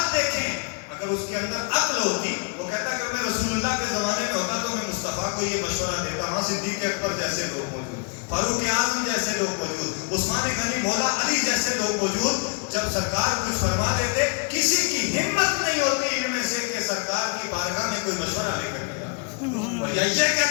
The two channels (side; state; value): right; quieter; 37.9 dB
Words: دیکھیں. اگر اس کے اندر عقل ہوتی وہ کہتا کہ میں رسول اللہ کے زمانے میں ہوتا تو میں مصطفیٰ کو یہ مشورہ دیتا. وہاں صدیق اکبر جیسے لوگ موجود، فاروق اعظم جیسے لوگ موجود، عثمان غنی، مولا علی جیسے لوگ موجود. جب سرکار کچھ فرما دیتے کسی کی ہمت نہیں ہوتی ان میں سے کہ سرکار کی بارگاہ میں کوئی مشورہ لے کر کے جاتا اور یہ